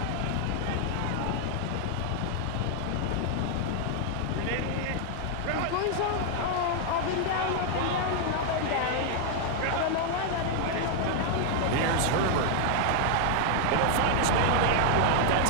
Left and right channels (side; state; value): both; different; correlation 0.00